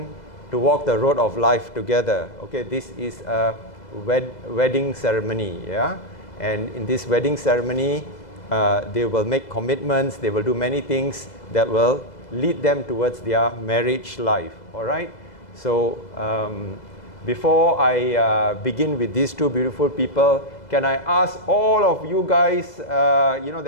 to walk the road of life together. Okay, this is a wedding ceremony, yeah? And in this wedding ceremony, they will make commitments, they will do many things that will lead them towards their marriage life, all right? So before I begin with these two beautiful people, can I ask all of you guys, there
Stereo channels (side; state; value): right; late; 2.0 ms